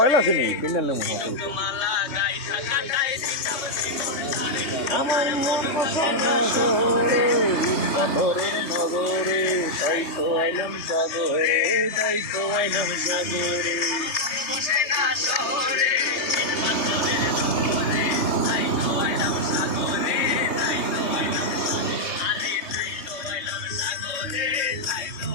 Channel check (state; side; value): late; right; 3.2 ms